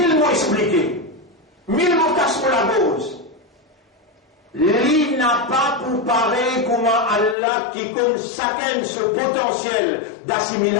mots expliqués, 1000 mots cassent pour la cause. Lui n'a pas pour pareil comment Allah qui compte chacun ce potentiel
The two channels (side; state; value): right; drops out; at 7.4 s